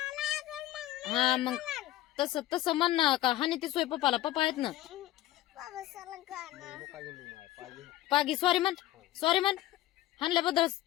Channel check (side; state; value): right; quieter; 15.1 dB